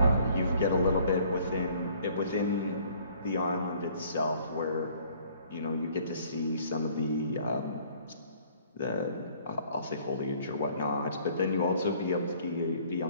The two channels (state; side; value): inverted; both; correlation -0.58